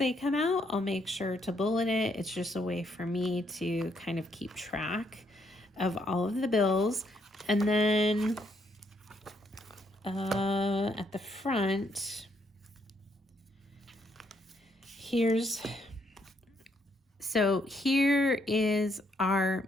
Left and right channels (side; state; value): both; normal; correlation 0.73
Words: come out, I'll make sure to bullet it. It's just a way for me to kind of keep track of all of the bills. And then at the front, here is our